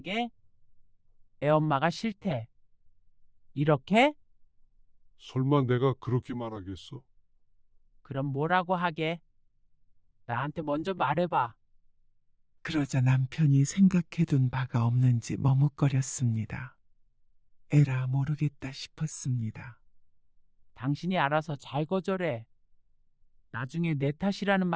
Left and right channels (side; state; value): both; identical; correlation 1.00